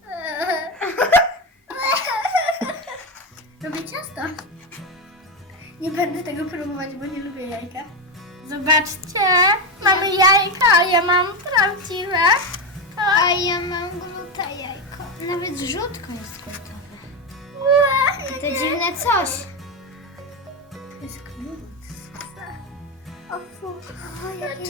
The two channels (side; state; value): both; normal; correlation 0.12